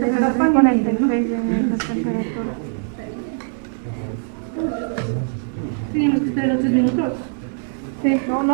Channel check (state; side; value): silent; left; 65 dB below the other